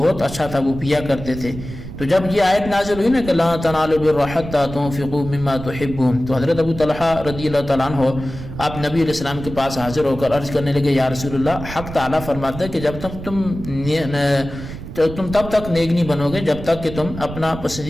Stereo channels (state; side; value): noise; right; rumble, 11 dB below the sound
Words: اچھا تھا وہ پیا کرتے تھے۔ تو جب یہ آیت نازل ہوئی نا کہ لا تنالوا البر حتى تنفقوا مما تحبون، تو حضرت ابو طلحہ رضی اللہ تعالیٰ عنہ آپ نبی علیہ السلام کے پاس حاضر ہو کر عرض کرنے لگے، یا رسول اللہ، حق تعالیٰ فرماتا ہے کہ جب تک تم تب تک نیک نہیں بنو گے جب تک کہ تم اپنا